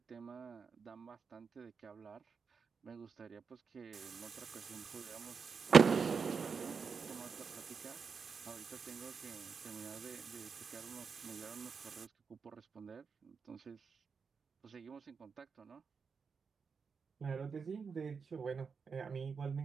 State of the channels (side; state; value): left; quieter; 5.6 dB